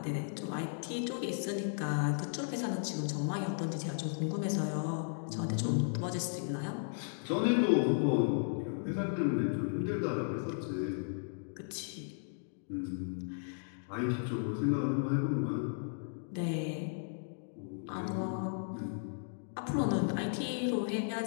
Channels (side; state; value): right; silent; digital silence